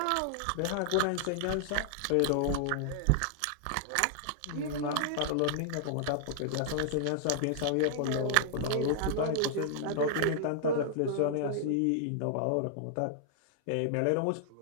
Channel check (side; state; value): both; different; correlation -0.01